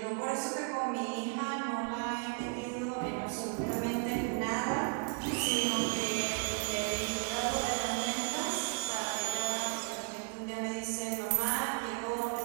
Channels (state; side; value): quieter; left; 37.7 dB